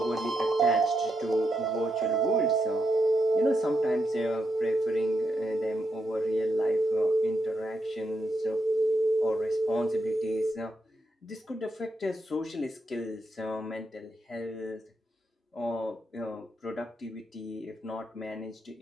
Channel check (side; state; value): both; normal; correlation 0.82